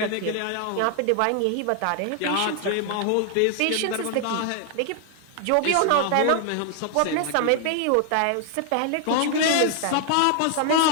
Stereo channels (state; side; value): different; both; correlation 0.00